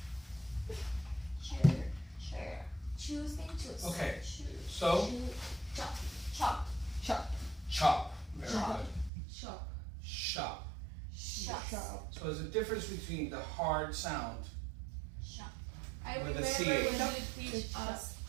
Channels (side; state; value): left; drops out; at 9.1 s